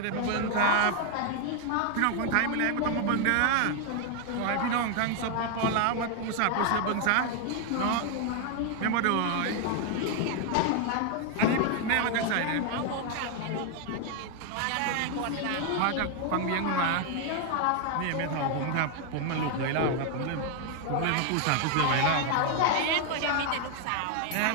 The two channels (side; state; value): both; different; correlation 0.01